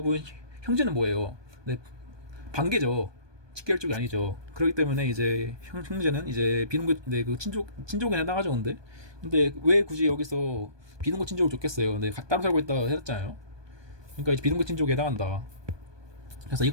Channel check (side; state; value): left; late; 1.2 ms